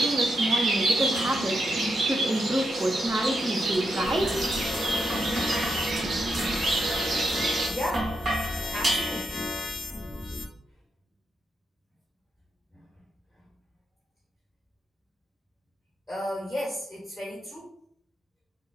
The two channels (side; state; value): both; normal; correlation 0.83